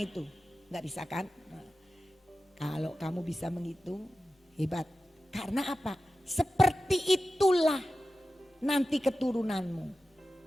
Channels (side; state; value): both; normal; correlation 0.93